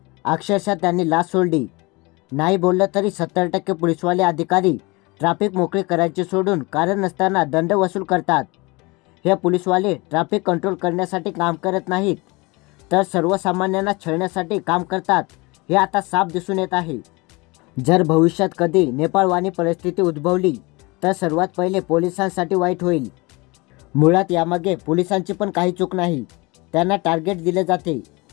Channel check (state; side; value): quieter; right; 25.2 dB